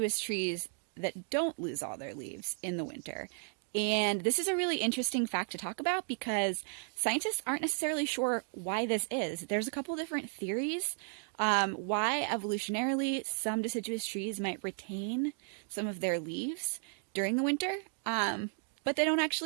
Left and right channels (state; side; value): silent; left; 55 dB below the other